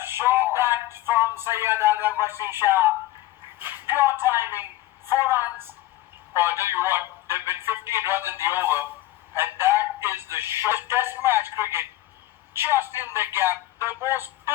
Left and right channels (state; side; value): quieter; right; 16.3 dB